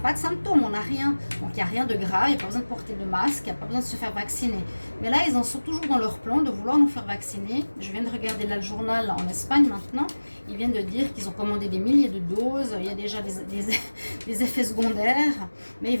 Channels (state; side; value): inverted; both; correlation -1.00